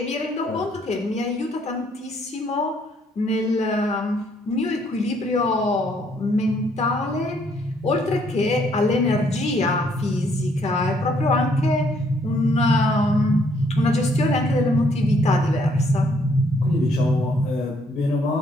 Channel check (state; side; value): normal; both; correlation 0.67